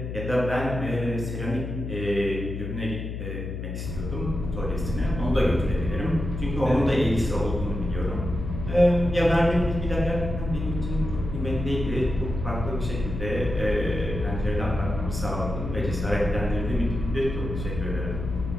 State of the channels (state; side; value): noise; left; hum, 6 dB below the sound